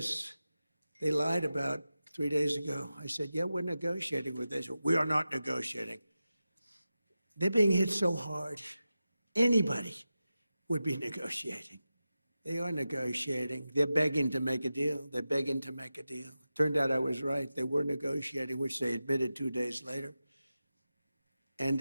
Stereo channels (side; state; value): both; inverted; correlation -0.93